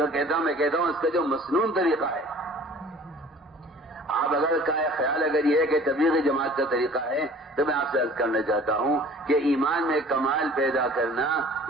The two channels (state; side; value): normal; both; correlation 0.48